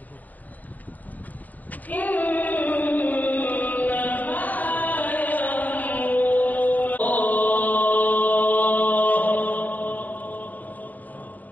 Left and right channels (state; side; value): late; right; 0.080 ms